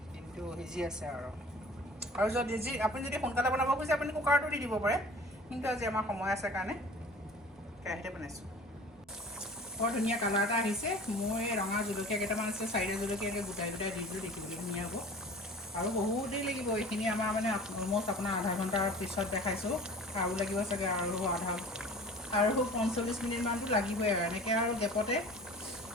কিন্তু সিজি আছে আৰু যদি আপুনি যদি সোনকালে বনাব খুজিছে আপুনি কুকাৰটো দি দিব পাৰে কিন্তু আজি আমাৰ সময় আছে কাৰণে কেৰাহীতে বনাইছোঁ বৰ ধুনীয়া কালাৰ এটা আহিছে মোৰ এই ৰঙা জলকীয়া কেইটামান আছে 4টা জলকীয়াকৈ গোটাই দি দিলোঁ দেখিবলৈ ধুনীয়া হ'ব আৰু বহুত দেৰি লাগিব এইখিনি আমাৰ মানে অলম'ষ্ট আপোনাৰ আধা ঘণ্টাৰ পিছত দেখাইছোঁ আৰু লাগিব চাগে আৰু 45 মিনিটমানটো লাগিবই আৰু এনেকৈ আৰু গেপতে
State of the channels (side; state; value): both; normal; correlation 0.44